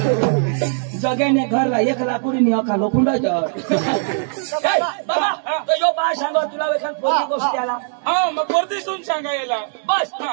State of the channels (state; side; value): silent; left; digital silence